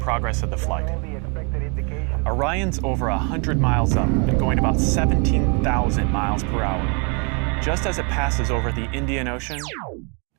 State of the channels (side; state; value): left; quieter; 34.5 dB